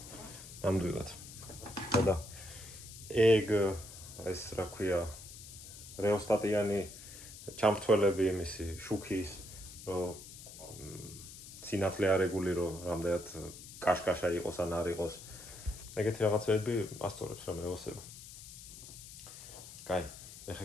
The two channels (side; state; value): left; noise; hiss, 14 dB below the sound